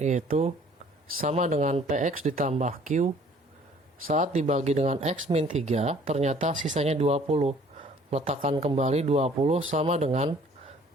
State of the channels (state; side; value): normal; both; correlation 0.55